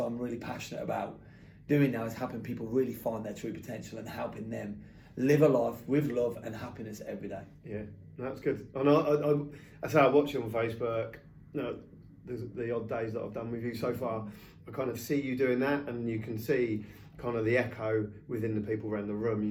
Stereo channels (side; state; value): both; identical; correlation 1.00